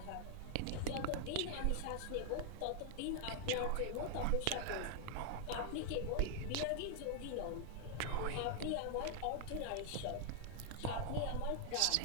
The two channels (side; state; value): both; different; correlation 0.00